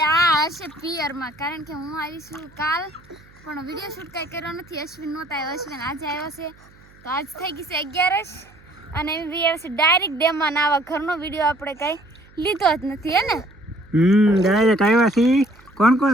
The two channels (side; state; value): right; noise; hum, 27 dB below the sound